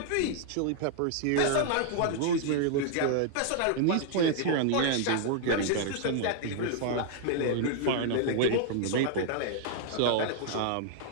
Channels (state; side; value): different; both; correlation 0.00